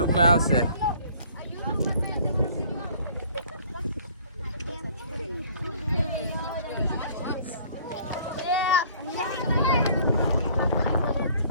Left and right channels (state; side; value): inverted; both; correlation -0.55